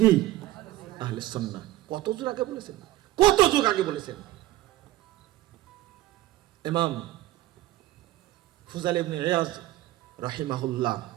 আহলুস সুন্নাহ। কত যুগ আগে বলেছেন, কত যুগ আগে বলেছেন। ইমাম ফুজাইল ইবনে ইয়াজ রাহিমাহুল্লাহ,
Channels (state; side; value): quieter; left; 16.2 dB